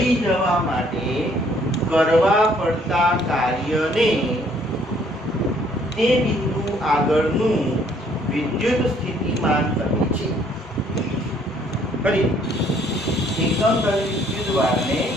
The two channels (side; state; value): both; normal; correlation 0.63